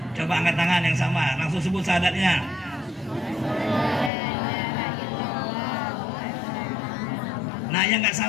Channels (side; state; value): right; drops out; at 4.1 s